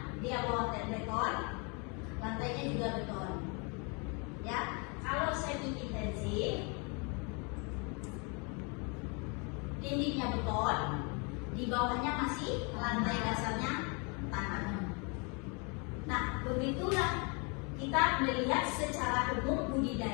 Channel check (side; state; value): right; quieter; 33.1 dB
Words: dia bawa beton, lantainya juga beton. Ya, kalau semi-intensif, dindingnya beton, di bawahnya masih lantai dasarnya tanah. Nah, begitulah kita melihat secara umum